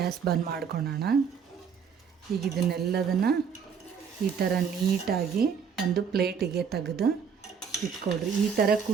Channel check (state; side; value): quieter; left; 6.7 dB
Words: ಬಂದ್ ಮಾಡ್ಕೊಳ್ಳೋಣ. ಈಗ ಇದನ್ನೆಲ್ಲದನ್ನು ಈ ಥರ ನೀಟಾಗಿ ಒಂದು ಪ್ಲೇಟಿಗೆ ತೆಗೆದು ಇಟ್ಕೊಳ್ರಿ. ಈ ಥರ